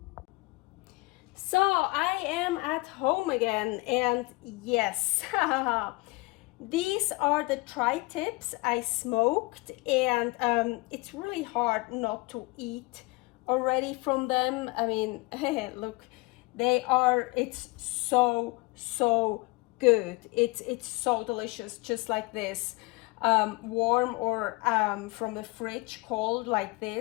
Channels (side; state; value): right; quieter; 24.7 dB